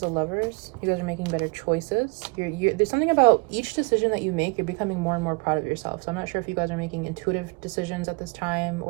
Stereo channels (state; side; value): quieter; left; 30.2 dB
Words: the Lovers. You guys are making better choices. There's something about each decision that you make, you're becoming more and more proud of yourself. So I'm not sure if you guys are making intuitive decisions at this time,